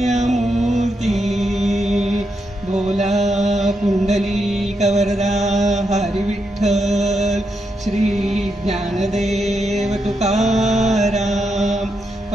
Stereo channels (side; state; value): both; normal; correlation 0.82